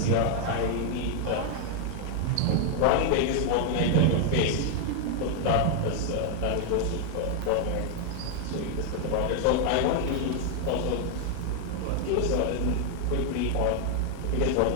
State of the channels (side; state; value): both; different; correlation 0.00